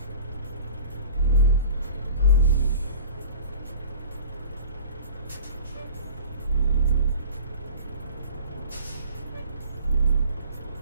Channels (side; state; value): both; inverted; correlation -0.44